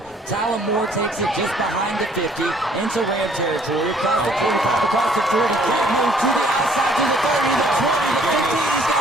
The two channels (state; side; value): normal; both; correlation 0.61